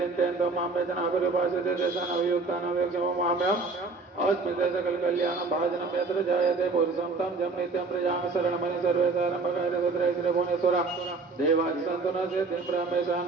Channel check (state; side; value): quieter; left; 3.9 dB